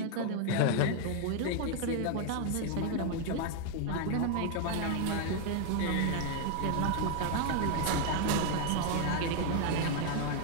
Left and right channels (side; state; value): both; different; correlation 0.00